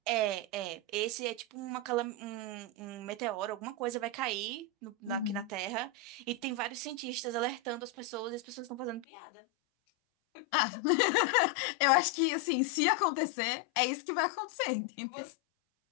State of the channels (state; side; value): drops out; right; at 9.1 s